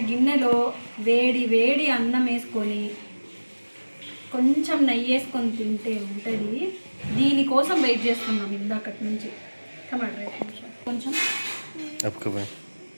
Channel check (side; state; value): both; inverted; correlation -1.00